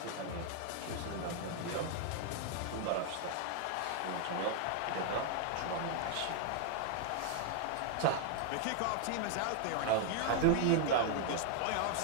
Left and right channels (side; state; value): both; different; correlation 0.00